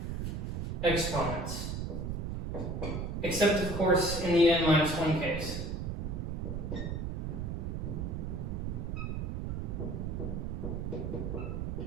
exponents, except of course in the n-1 case.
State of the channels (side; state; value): right; noise; rumble, 3 dB below the sound